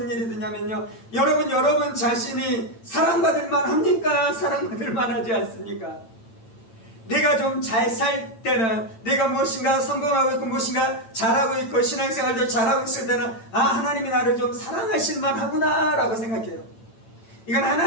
일이 드냐면요, 여러분 자신이 사랑받을 만합니까? 사랑받을 만하지 않습니까? 내가 좀 잘 살 때는, 내가 무엇인가 성공하고 있고 무엇인가 잘하고 있고 신앙생활도 잘하고 있을 때는 하나님이 나를 좀 사랑하실 만하구나 라고 생각해요. 이건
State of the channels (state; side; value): late; right; 8.9 ms